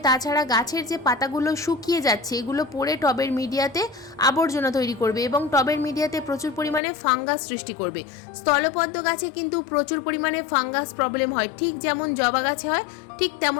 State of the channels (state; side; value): drops out; right; at 6.8 s